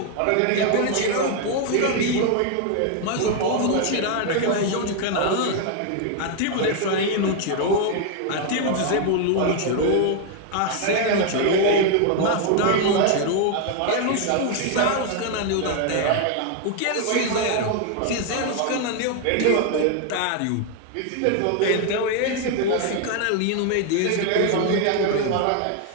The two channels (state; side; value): different; both; correlation 0.00